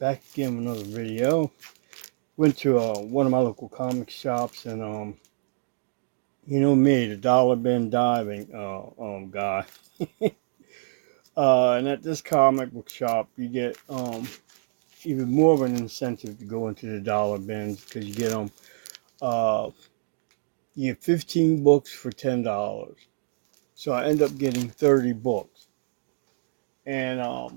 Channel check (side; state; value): left; silent; digital silence